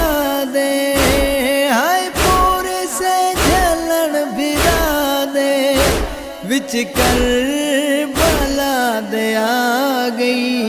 دے، ہائے پور سے جلن بھرا دے، وچ کربلا دے آ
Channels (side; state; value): both; identical; correlation 1.00